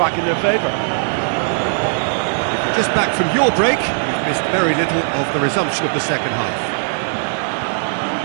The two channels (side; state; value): left; silent; digital silence